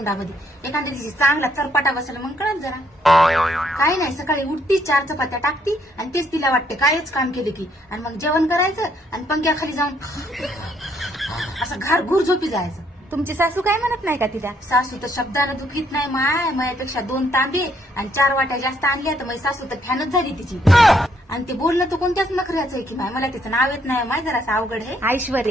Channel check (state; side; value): normal; both; correlation 0.70